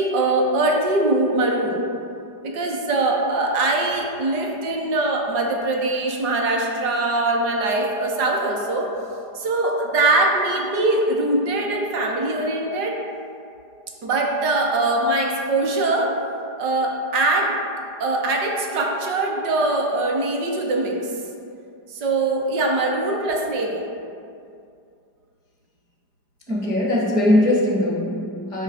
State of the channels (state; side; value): late; left; 4.9 ms